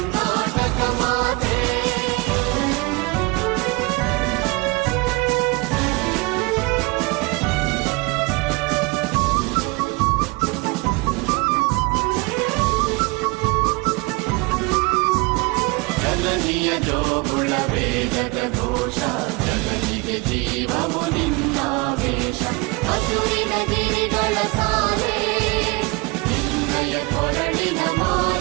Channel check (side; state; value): left; quieter; 26.4 dB